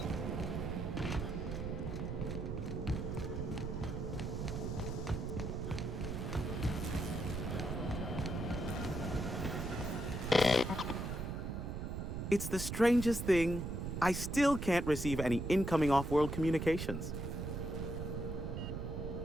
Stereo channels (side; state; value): right; noise; rumble, 4 dB below the sound